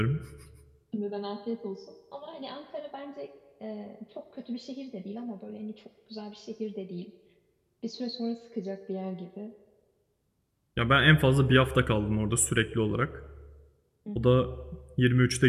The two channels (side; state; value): both; identical; correlation 1.00